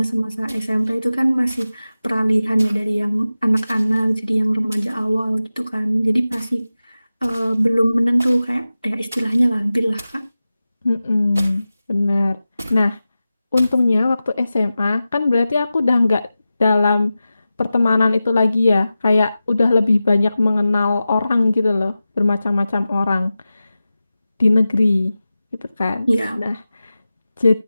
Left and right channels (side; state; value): both; inverted; correlation -0.94